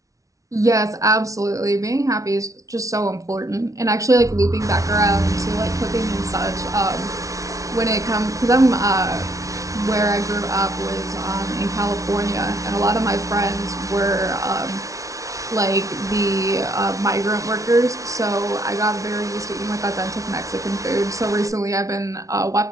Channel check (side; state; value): left; late; 0.16 ms